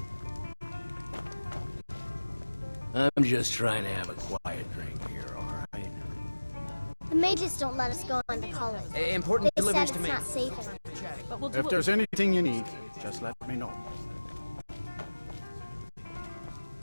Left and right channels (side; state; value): both; inverted; correlation -1.00